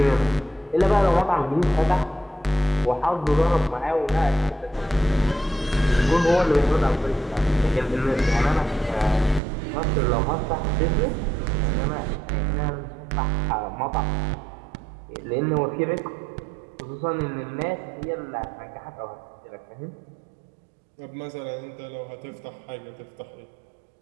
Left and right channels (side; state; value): left; drops out; at 9.4 s